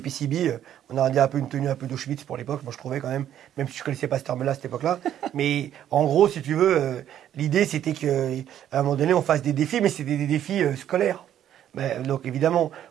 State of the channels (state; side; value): quieter; left; 10.9 dB